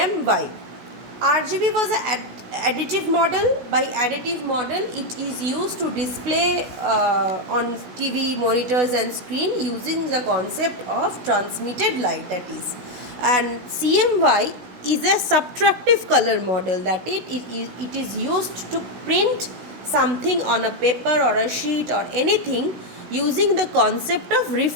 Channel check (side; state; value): left; late; 16 ms